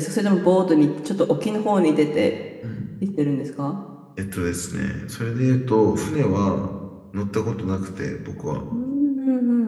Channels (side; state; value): both; identical; correlation 1.00